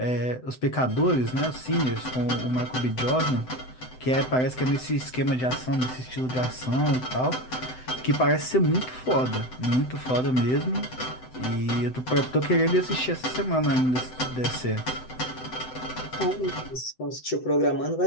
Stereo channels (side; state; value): right; late; 7.9 ms